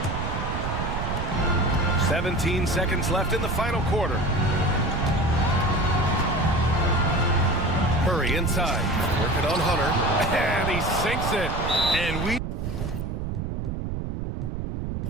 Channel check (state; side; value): noise; right; rumble, 3 dB below the sound